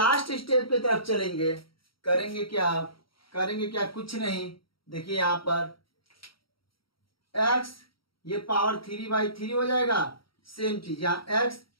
स्टेप पे तरफ चलेंगे। करेंगे क्या, कुछ नहीं। देखिए यहां पर x ये पावर 3/3 हो जाएगा, सेम चीज यहाँ x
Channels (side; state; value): right; late; 0.74 ms